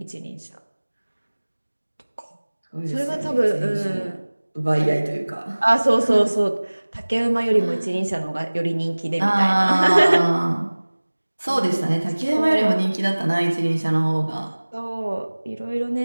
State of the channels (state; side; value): inverted; both; correlation -1.00